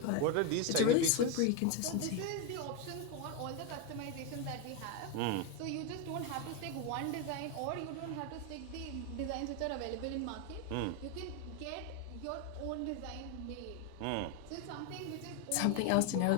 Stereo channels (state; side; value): different; both; correlation 0.02